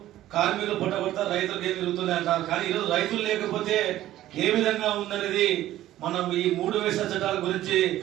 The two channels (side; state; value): left; quieter; 14.0 dB